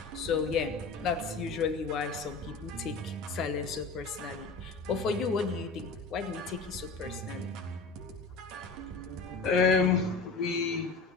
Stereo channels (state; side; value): quieter; right; 4.0 dB